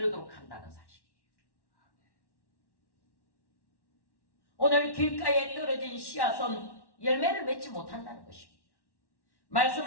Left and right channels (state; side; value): late; right; 1.1 ms